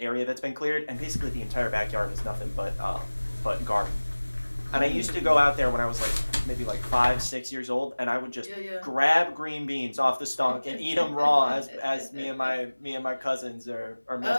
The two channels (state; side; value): inverted; both; correlation -1.00